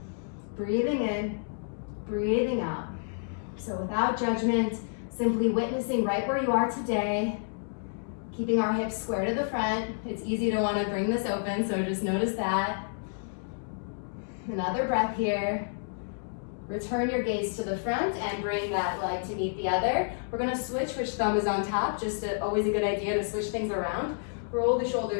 Breathing in, breathing out. So without judgment, simply witnessing right where you are today, keeping our hips square to the front. It's easy to want to bring this open, so just notice that. Another breath here. Return your gaze to the front and bring that leg to meet the other. We're going to switch which thumb is on top, always a good idea to switch things around. Roll the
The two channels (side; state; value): right; silent; digital silence